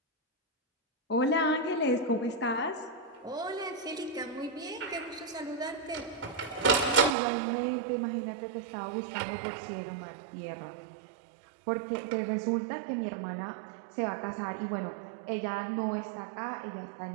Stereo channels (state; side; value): drops out; left; at 7.2 s